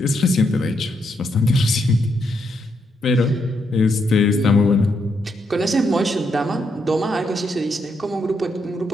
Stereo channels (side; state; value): both; normal; correlation 0.79